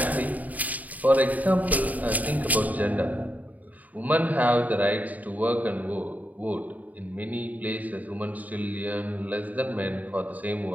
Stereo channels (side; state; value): left; late; 0.076 ms